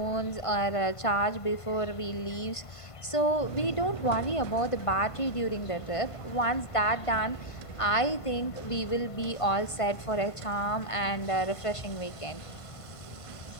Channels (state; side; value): late; right; 1.5 ms